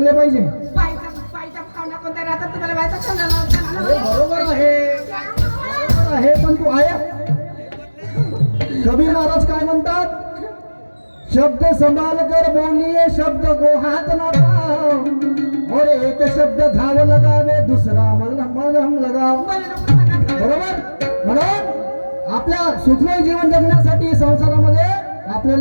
पाहिजे. पायचा भावना कोणत्या राहतात तुम्हाला माहिती आहे? बरोबर आहे, पण तू आहे. कबीर महाराज काय म्हणतात? शब्द संभाल कर बोलिए, शब्द को हाथ न लगाओ, और एक शब्द घाव लगावे, दुसरा मलहम लगाओ. बरोबर. म्हणून आपल्या सुखमय जीवन जगण्यासाठी संसारामध्ये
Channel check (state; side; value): inverted; both; correlation -1.00